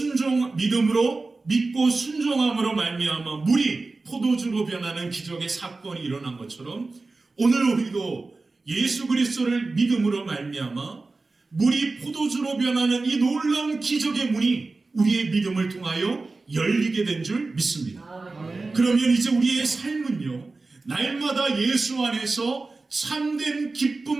믿고 순종함으로 말미암아 물이 포도주로 변하는 기적의 사건이 일어난 것처럼 오늘 우리도 예수 그리스도를 믿음으로 말미암아 물이 포도주로 변하는 이 놀라운 기적의 문이 우리의 믿음을 통하여 열리게 된 줄 믿습니다. 그러면 이제 우리의 삶은요, 날마다 예수 안에서 참된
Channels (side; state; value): left; quieter; 3.6 dB